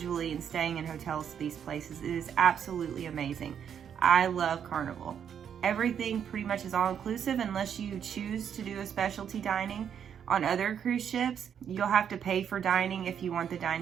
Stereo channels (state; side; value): quieter; left; 8.3 dB